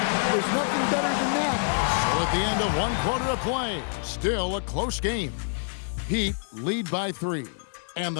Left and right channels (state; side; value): silent; right; 60 dB below the other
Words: there's nothing better than that. So at the end of 1 quarter of play, still a close game. Heat lead by 3. And